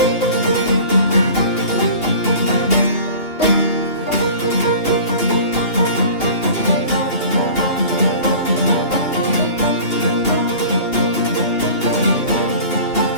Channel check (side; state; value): right; late; 3.0 ms